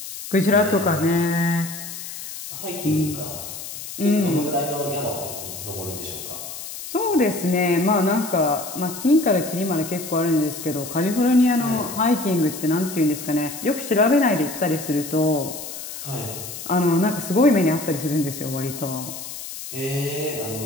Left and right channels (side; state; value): left; noise; hiss, 10 dB below the sound